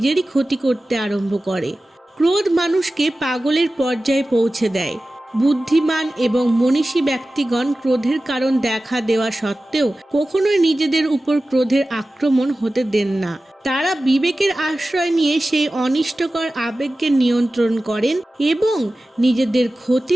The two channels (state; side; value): normal; both; correlation 0.95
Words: ক্ষতি করতে আরম্ভ করে। ক্রোধ মানুষকে পাগলের পর্যায়ে পৌঁছে দেয়। বুদ্ধিমান এবং মনীষী ব্যক্তিগণ ক্রোধের কারণ দেখা দেওয়া সত্ত্বেও কখনোই নিজেদের উপর ক্রোধের আক্রমণ হতে দেন না। তারা বিবেকের আশ্রয় নিয়ে সেই অনিষ্টকর আবেগকে নিয়ন্ত্রণ করেন এবং নিজেদের